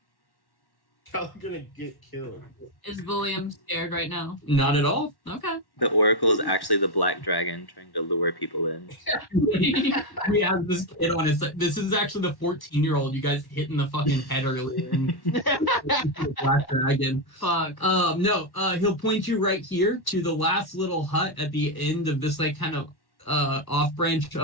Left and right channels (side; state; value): right; late; 1.1 ms